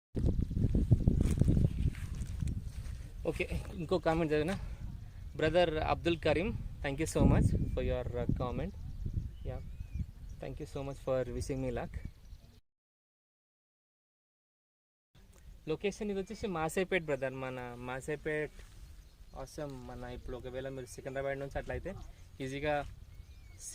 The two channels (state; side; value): identical; both; correlation 1.00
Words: ఓకే, ఇంకో కామెంట్ చదివిన brother Abdul Karim, thank you so much for your comment. Yeah, thank you so much for wishing me luck. Location ఇది వచ్చేసి మాసేపేట్ బ్రదర్, మన మాసేపేట్ అవసరం. మన ఇప్పుడు ఒకవేళ మీరు సికింద్రాబాద్ నుంచి అట్లయితే ఈజీగా